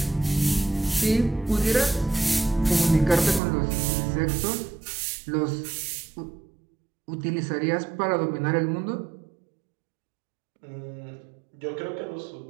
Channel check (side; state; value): left; drops out; at 3.4 s